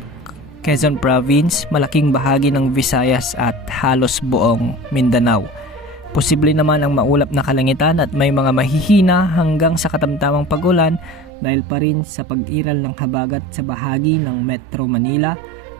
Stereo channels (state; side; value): drops out; left; at 11.3 s